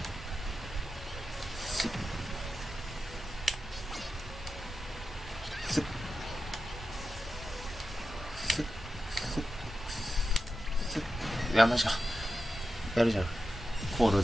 すっすっすっすっすっ。いや、マジか。やるじゃん。コオロ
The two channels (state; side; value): normal; both; correlation 0.91